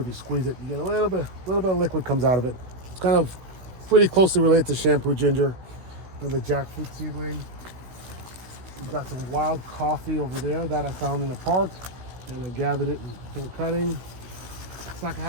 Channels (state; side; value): late; left; 16 ms